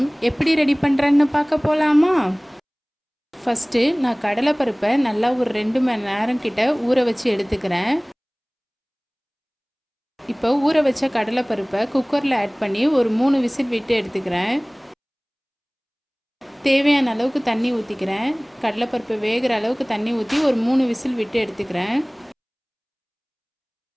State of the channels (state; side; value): identical; both; correlation 1.00